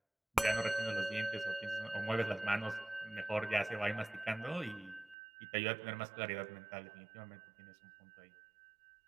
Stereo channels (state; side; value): drops out; left; at 5.2 s